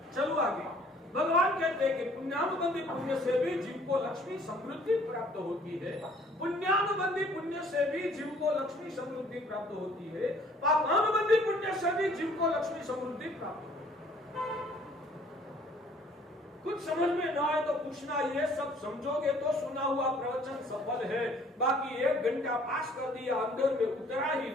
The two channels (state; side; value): normal; both; correlation 0.57